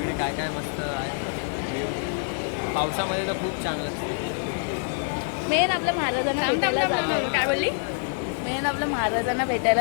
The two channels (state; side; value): silent; right; 61 dB below the other